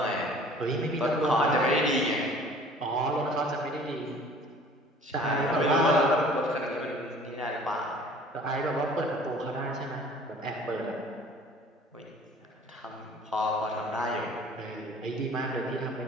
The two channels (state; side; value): normal; both; correlation 0.50